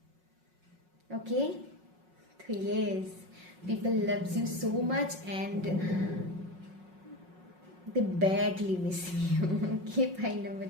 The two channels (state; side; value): late; left; 5.5 ms